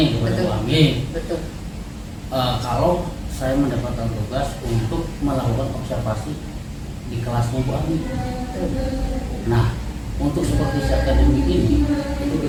kepada Betul. Bu Ami, Betul. kalau saya mendapatkan tugas untuk melakukan observasi di kelasnya Bu Ami. Betul. Nah, untuk supervisi akademik ini itu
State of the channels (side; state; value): both; identical; correlation 1.00